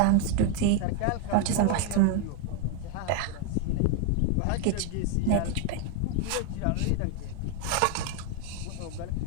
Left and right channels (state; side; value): different; both; correlation 0.01